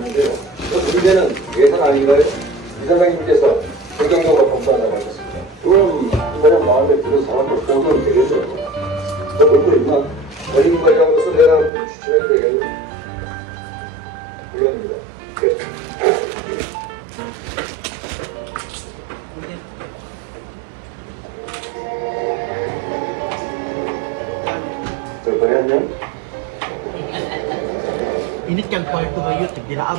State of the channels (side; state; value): left; drops out; at 11.7 s